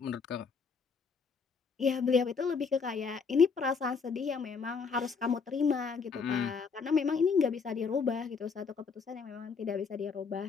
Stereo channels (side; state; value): right; quieter; 5.4 dB